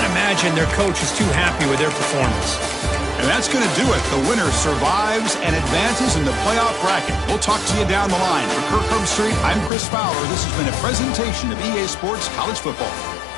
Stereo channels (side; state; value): right; drops out; at 9.7 s